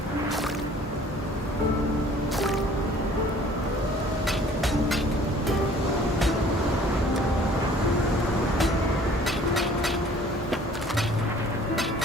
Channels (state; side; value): normal; both; correlation 0.53